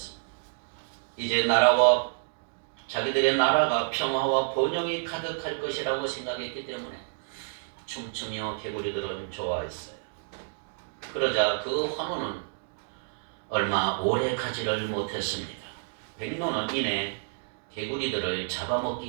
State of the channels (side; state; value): left; silent; digital silence